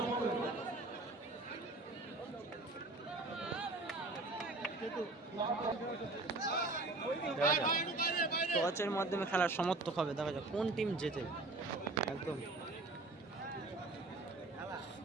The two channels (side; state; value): left; quieter; 3.1 dB